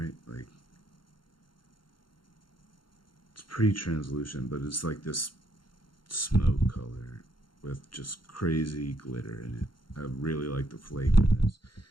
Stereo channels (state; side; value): late; right; 0.72 ms